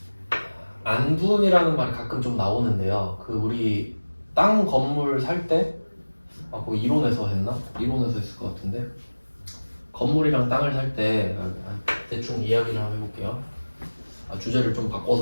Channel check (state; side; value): inverted; both; correlation -1.00